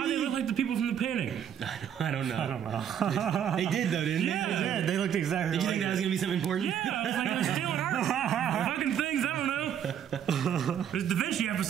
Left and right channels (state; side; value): quieter; left; 9.2 dB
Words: do they look like the people from the painting? I don't know. I don't know. They did, though, didn't Yeah. they? They did. They looked exactly Did you like think that was going to be something important? Yeah, I was like, they're stealing art. Fucking things, I don't know. There's a Da Vinci